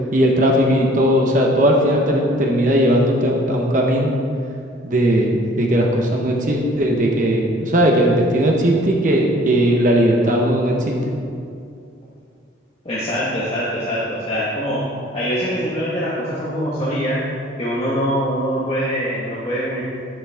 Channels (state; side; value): normal; both; correlation 0.53